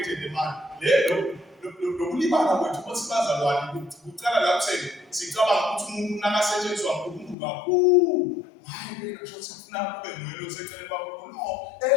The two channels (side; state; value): right; drops out; at 7.4 s